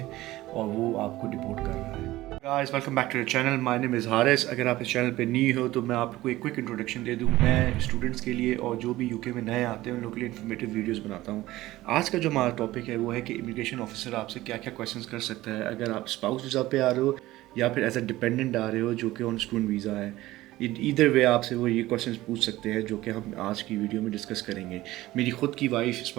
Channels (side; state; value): left; quieter; 17.0 dB